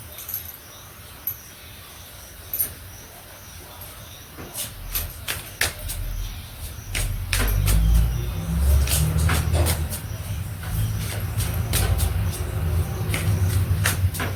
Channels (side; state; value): both; identical; correlation 1.00